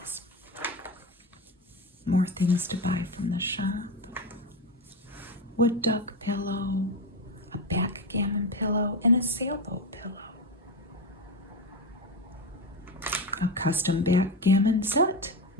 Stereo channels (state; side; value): normal; both; correlation 0.17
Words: More things to buy from the shop. Wood duck pillow, a backgammon pillow, and a sailboat pillow. A custom backgammon set.